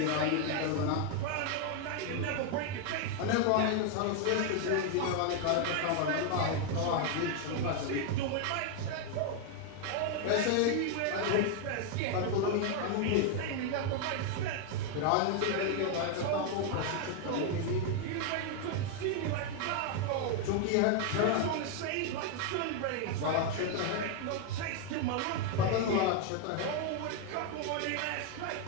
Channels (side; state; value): both; different; correlation 0.01